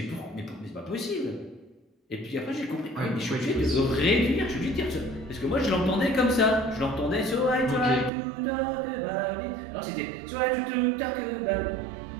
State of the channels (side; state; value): left; drops out; at 8.1 s